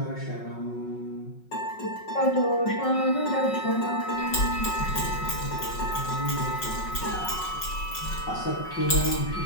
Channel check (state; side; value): late; right; 5.4 ms